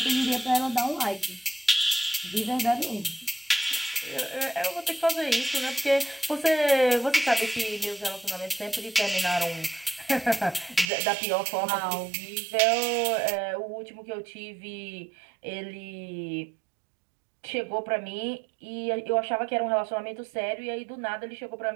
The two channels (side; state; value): left; drops out; at 10.9 s